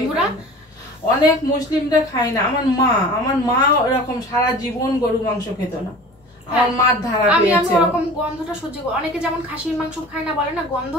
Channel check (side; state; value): both; normal; correlation 0.41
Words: অনেক মুসলিমরা খায় না। আমার মা এরকম সারা জীবন গরু মাংস খেত না। আমার মার ধারা আমি ওরকম গন্ধটা সহ্য করি। অনেকে যেমন খাসির মাংস খায় না বলে না, গন্ধ,